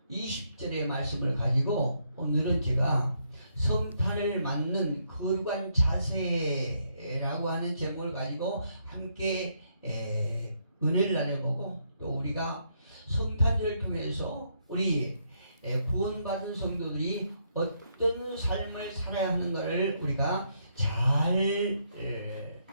20절의 말씀을 가지고 오늘은 제가 성탄을 맞는 거룩한 자세라고 하는 제목을 가지고 함께 은혜를 나눠보고, 또 우리가 성탄절을 통해서 우리 구원받은 성도들이 어떤 삶을 살아야 하는가를 우리가 잘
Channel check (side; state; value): both; inverted; correlation -0.75